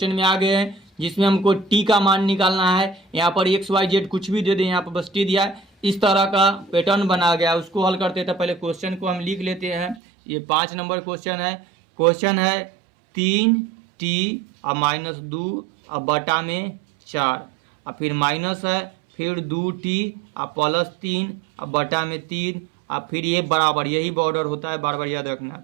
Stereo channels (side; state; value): left; drops out; at 10.0 s